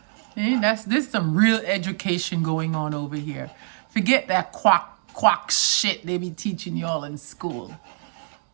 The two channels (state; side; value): silent; left; digital silence